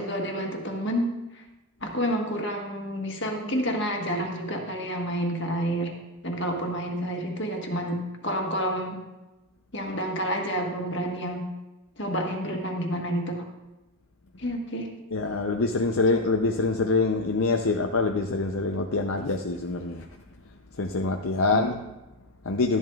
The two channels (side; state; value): both; normal; correlation 0.10